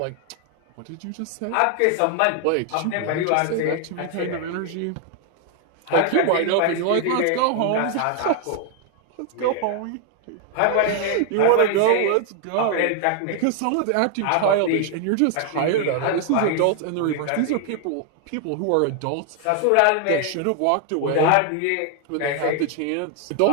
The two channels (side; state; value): both; different; correlation 0.00